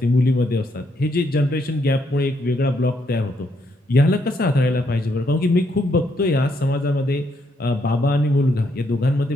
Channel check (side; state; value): both; normal; correlation 0.75